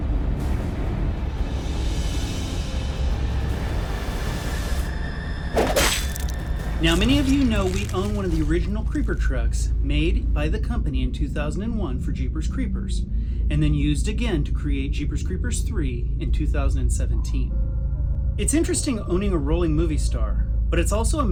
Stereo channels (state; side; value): identical; both; correlation 1.00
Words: Now, many of you know we own one of the original Creeper trucks made by the company in 2001 for Jeepers Creepers, and then used again to create Jeepers Creepers 3 in 2017. It's interesting owning a rolling movie star, but it's also a